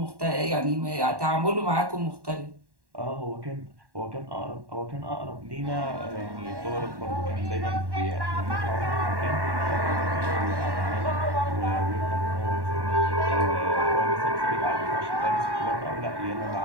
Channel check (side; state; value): left; late; 1.1 ms